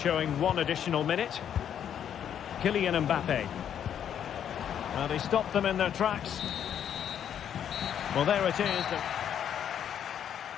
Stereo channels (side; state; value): right; quieter; 9.2 dB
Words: 1 additional minute. Kylian Mbappe. Well, they stopped them in their tracks. Well, there it is.